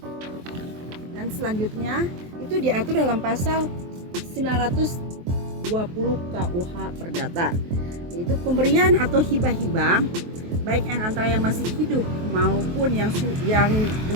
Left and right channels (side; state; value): left; late; 23 ms